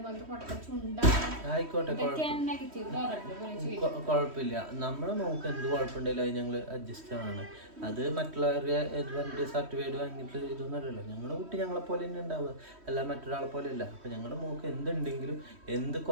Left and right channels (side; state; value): left; late; 3.1 ms